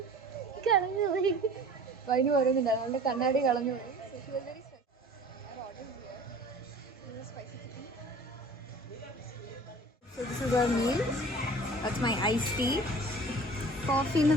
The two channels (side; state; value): both; normal; correlation 0.44